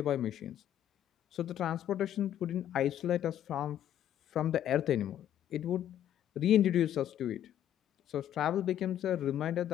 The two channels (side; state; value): right; quieter; 11.0 dB